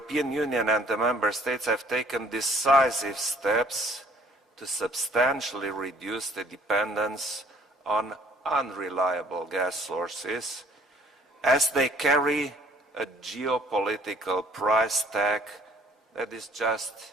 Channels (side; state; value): both; normal; correlation 0.58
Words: Union and the Member States have taken decisive steps to substantially reduce the dependence on unreliable gas sources, as they carry a geopolitical price tag that is just